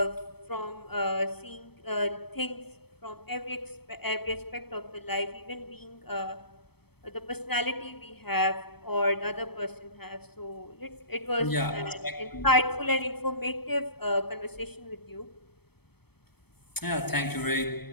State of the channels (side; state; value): right; late; 0.97 ms